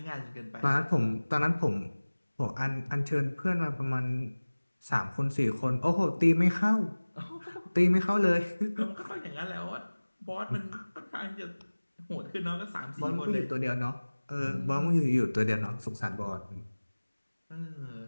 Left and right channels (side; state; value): both; inverted; correlation -1.00